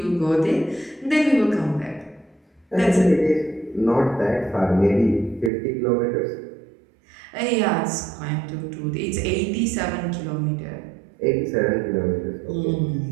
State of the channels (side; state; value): left; drops out; at 5.5 s